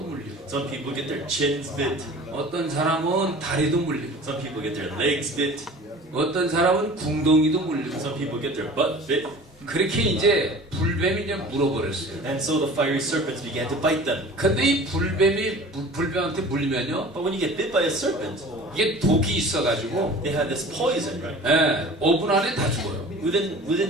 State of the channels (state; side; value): normal; both; correlation 0.42